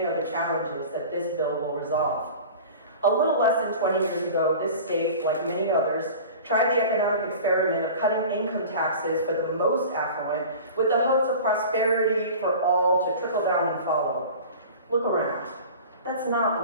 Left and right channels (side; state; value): both; inverted; correlation -0.38